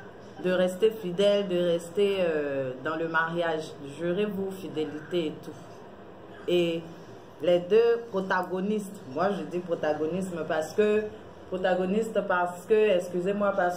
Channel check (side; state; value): both; identical; correlation 1.00